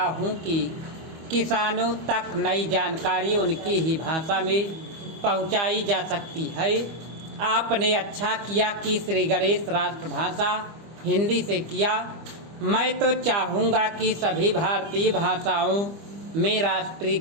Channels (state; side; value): late; left; 25 ms